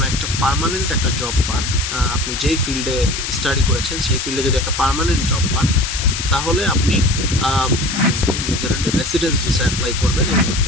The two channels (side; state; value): left; noise; hiss, 4 dB below the sound